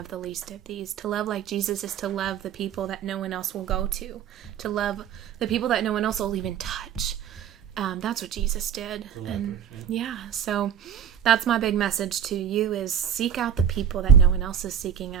the least of these. To love like Jesus is to love the people that no one else will go to. To love the people that no one else will even touch. That's what Jesus did. And so that's my big message to you is seek out the people that no one else is seeking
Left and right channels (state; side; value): quieter; left; 8.7 dB